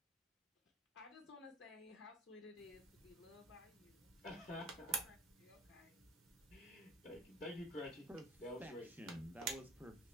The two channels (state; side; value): normal; both; correlation 0.46